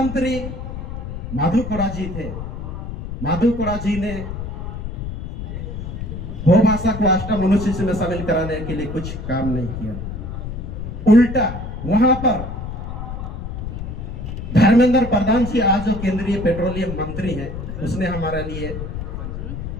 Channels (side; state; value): left; noise; rumble, 7 dB below the sound